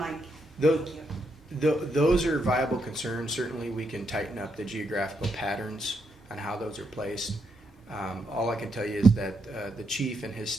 Tho- Thank you. Those are viable concerns. Certainly, we can tighten up the geographical patterns on how those are placed. All I can tell you is that the chief and his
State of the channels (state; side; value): normal; both; correlation 0.79